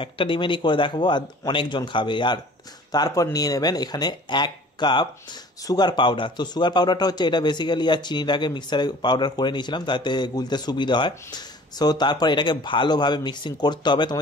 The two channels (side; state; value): both; normal; correlation 0.48